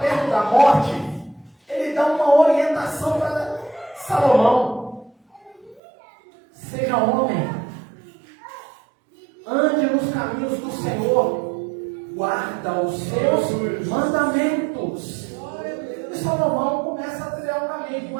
da morte, ele dá uma orientação para Salomão. Seja homem, ande nos caminhos do Senhor, guarda os seus mandamentos. E Salomão começa a trilhar um caminho,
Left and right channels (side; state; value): left; drops out; at 5.8 s